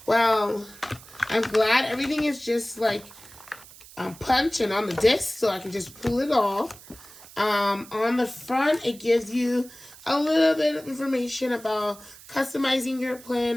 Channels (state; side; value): noise; right; hiss, 20 dB below the sound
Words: Well, I'm glad everything is just like punch and on the disc, so I can just pull it off. On the front, it gives you a little bit of information about customizing your